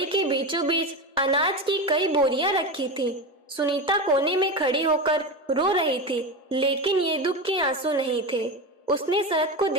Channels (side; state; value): both; normal; correlation 0.20